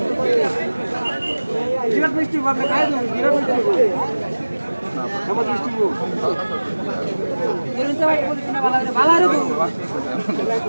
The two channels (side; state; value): both; inverted; correlation -1.00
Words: বিরাট মিষ্টি ভাবে খাই দেব বিরাট মিষ্টি আমার মিষ্টি গো এরতে ভাই পলিথিন ভালো রে